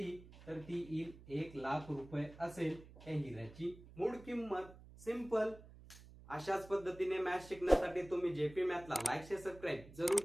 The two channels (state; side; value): noise; right; hum, 19 dB below the sound